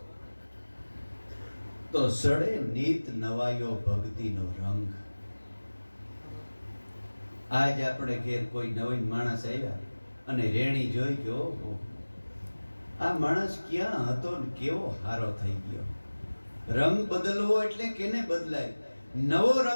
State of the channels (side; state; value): both; inverted; correlation -1.00